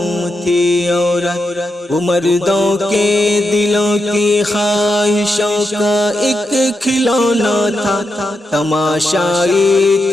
تھی عورت۔ وہ مردوں کے دلوں کی خواہشوں کا ایک کھلونا تھا، تماشائی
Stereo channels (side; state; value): both; normal; correlation 0.85